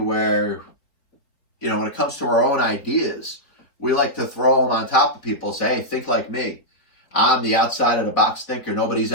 when it comes to our own ideas, we like to throw them on top of people and say, hey, think like me. I'm the outside of the box thinker. Nobody's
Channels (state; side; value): late; right; 3.8 ms